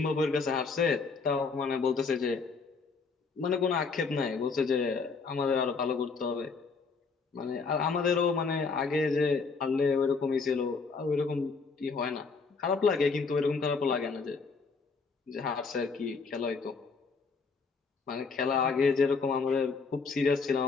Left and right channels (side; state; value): right; quieter; 4.7 dB